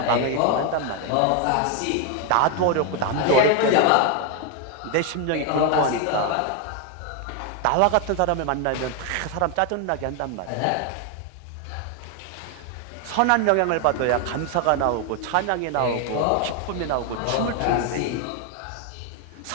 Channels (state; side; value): different; both; correlation 0.01